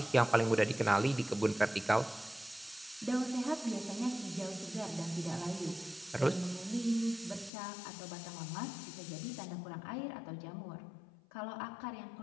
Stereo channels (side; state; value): right; drops out; at 7.5 s